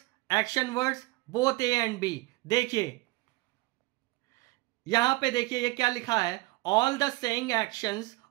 action words, both a and b. देखिए यहां पे देखिए ये क्या लिखा है, ऑल द सेइंग एक्शंस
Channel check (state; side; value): quieter; left; 22.0 dB